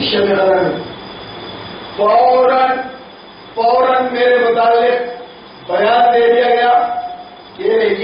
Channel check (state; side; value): identical; both; correlation 1.00